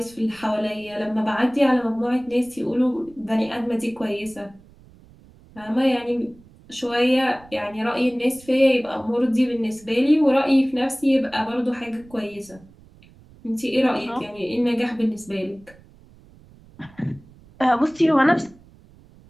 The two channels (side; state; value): right; noise; rumble, 25 dB below the sound